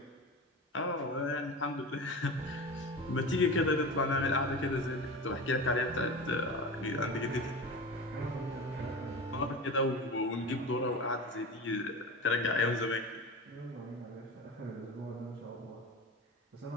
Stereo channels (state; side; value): normal; both; correlation 0.30